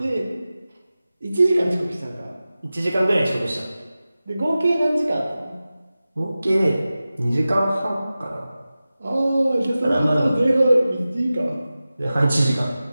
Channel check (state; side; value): inverted; both; correlation -0.95